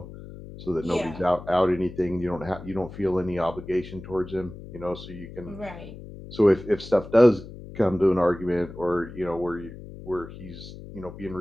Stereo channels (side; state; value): left; noise; hum, 14 dB below the sound